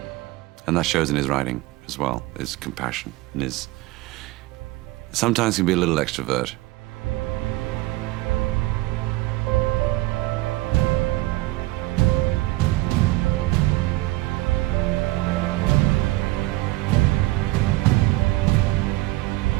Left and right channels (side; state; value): left; quieter; 19.4 dB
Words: And that shows in his writing as well, his compassion and his... Sometimes he can be a little extrovert.